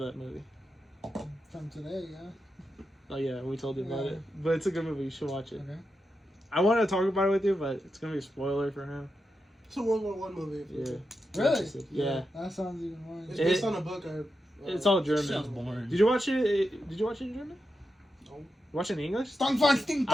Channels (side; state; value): both; normal; correlation 0.88